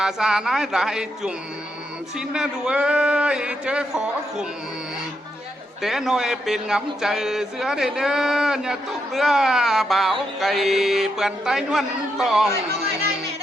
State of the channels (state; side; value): normal; both; correlation 0.81